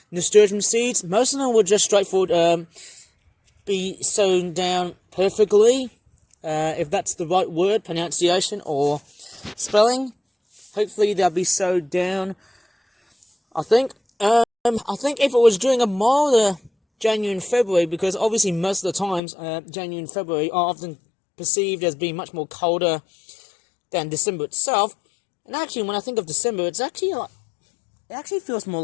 nasturtium seeds. Most of them will just straightforward be sewn down perfectly, if that's the right word, pronunciation or spelling. Hopefully they'll be sewed down. I think if it was during a milder January and February, because obviously most of the times January and February are often perceived as being much more colder than December itself. And actually, when I think of December, it's actually like, it actually feels more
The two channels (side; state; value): right; drops out; at 19.2 s